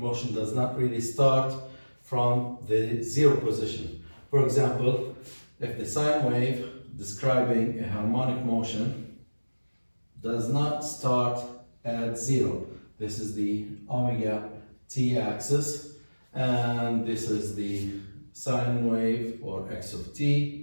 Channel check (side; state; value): both; inverted; correlation -1.00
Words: does not really start from the zero position? For example, if the sine wave describing a harmonic motion does not start at zero, this is the omega t axis, and this is the sine wave or x of